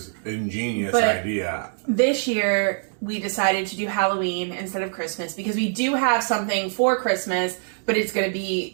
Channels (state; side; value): silent; left; digital silence